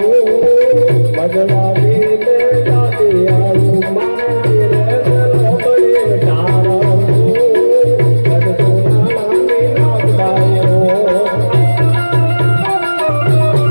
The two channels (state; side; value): inverted; both; correlation -1.00